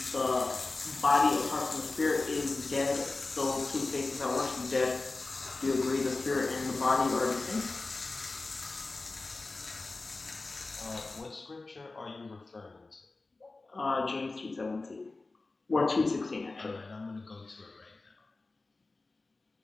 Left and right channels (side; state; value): right; quieter; 3.4 dB